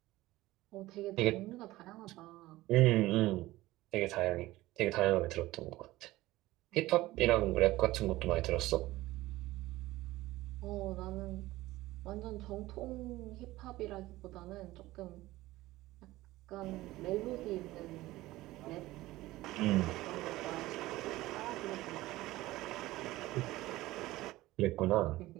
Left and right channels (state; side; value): quieter; left; 17.6 dB